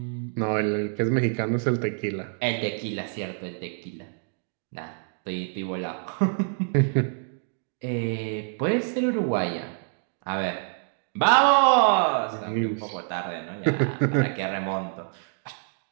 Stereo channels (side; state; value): left; silent; 60 dB below the other